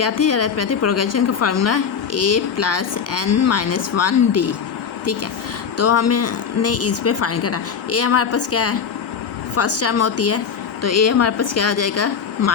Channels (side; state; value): right; quieter; 6.8 dB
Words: थी अरिथमेटिक प्रोग्रेशन का फार्मूला, A + n-1D। ठीक है, तो हमने इस पे फाइंड करना। A हमारे पास क्या है, फर्स्ट टर्म होती है, तो A हमारे पास क्या आ जाएगा,